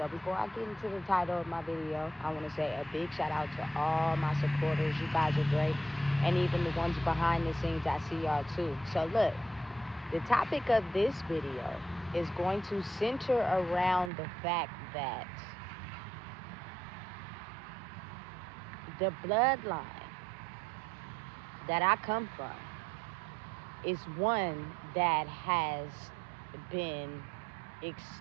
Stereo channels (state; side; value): drops out; left; at 14.1 s